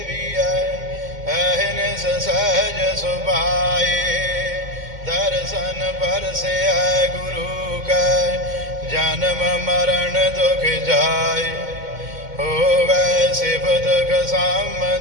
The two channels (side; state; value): left; late; 2.1 ms